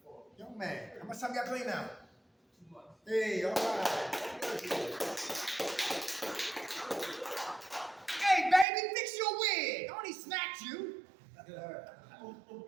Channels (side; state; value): left; drops out; at 8.7 s